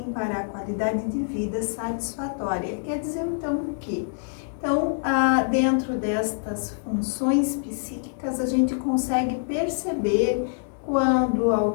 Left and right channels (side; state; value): right; silent; digital silence